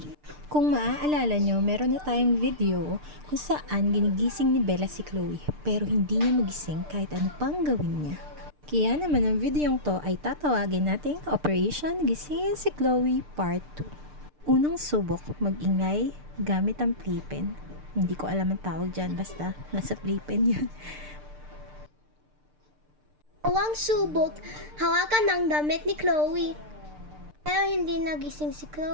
Kung maaalala nyo, meron na tayong video kung saan ginigising ni Bella si Chloe pero hindi niya magising kahit ano pang gawin niya. Kaya naman ang videong to ay tatawagin nating Operation Gisingin si Chloe Part 2. Unang subok, mag-ingay gamit ang playpen. Hindi ko alam ang tawag dyan, basta nasa playpen yun. Huwag subok, hawakan ang damit ni Chloe. Pero hindi nagising si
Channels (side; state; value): left; late; 6.7 ms